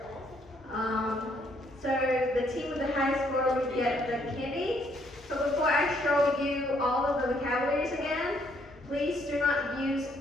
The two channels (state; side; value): normal; both; correlation 0.69